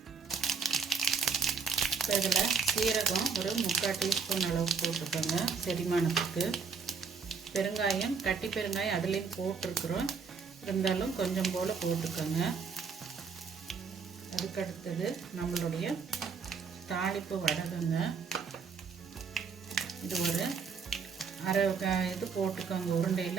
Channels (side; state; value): left; quieter; 5.5 dB